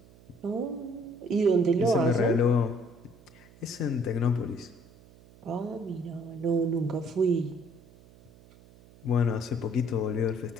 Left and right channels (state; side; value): noise; right; hum, 24 dB below the sound